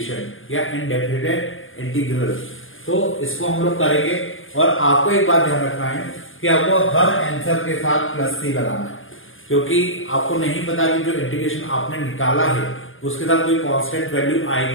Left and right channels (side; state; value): right; late; 0.58 ms